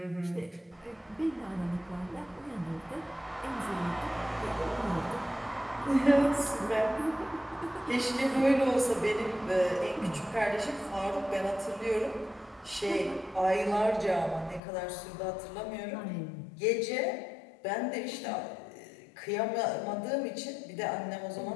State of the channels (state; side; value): drops out; right; at 14.6 s